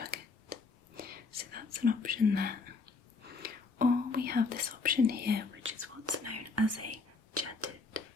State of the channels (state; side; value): quieter; right; 4.2 dB